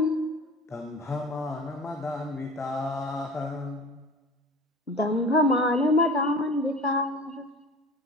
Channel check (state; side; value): normal; both; correlation 0.39